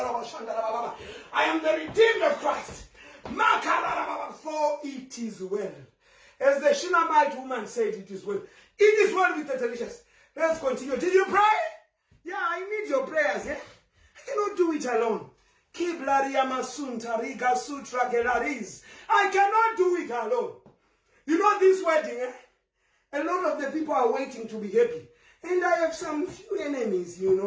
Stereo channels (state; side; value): identical; both; correlation 1.00